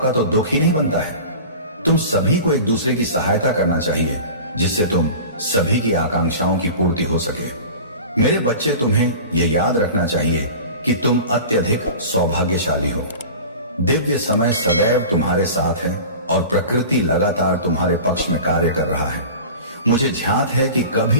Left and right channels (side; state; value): both; inverted; correlation -0.36